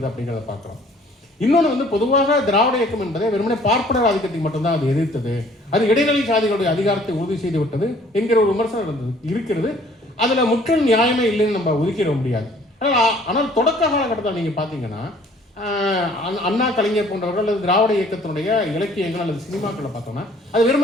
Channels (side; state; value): both; normal; correlation 0.56